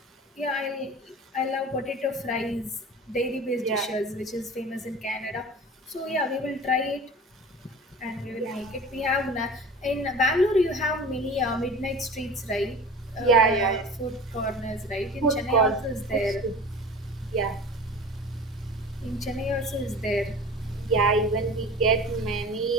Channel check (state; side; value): normal; both; correlation 0.38